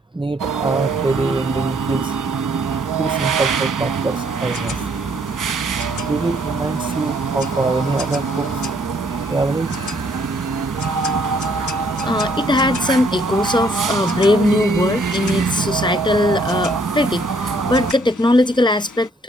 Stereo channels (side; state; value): both; normal; correlation 0.66